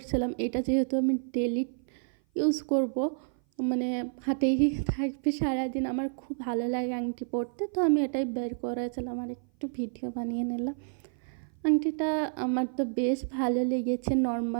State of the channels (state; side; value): silent; left; 55 dB below the other